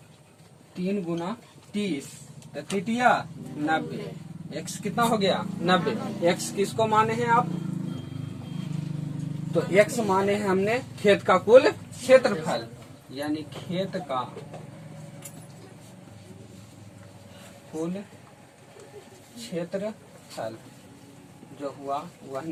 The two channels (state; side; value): identical; both; correlation 1.00